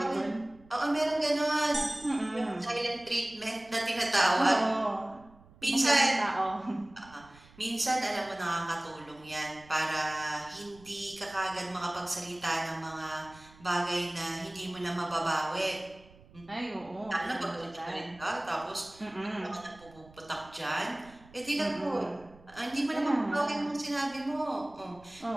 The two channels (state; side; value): noise; right; rumble, 24 dB below the sound